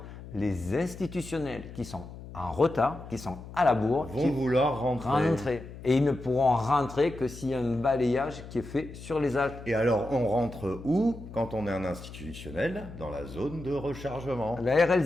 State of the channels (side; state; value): left; noise; hum, 14 dB below the sound